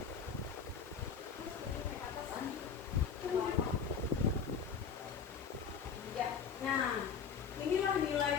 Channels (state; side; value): quieter; right; 6.5 dB